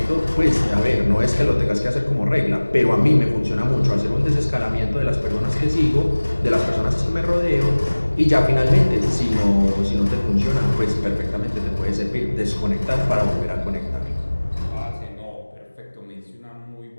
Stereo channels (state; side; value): inverted; both; correlation -1.00